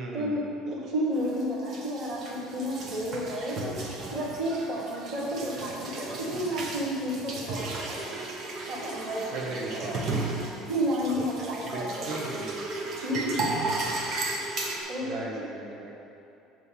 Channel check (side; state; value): both; normal; correlation 0.39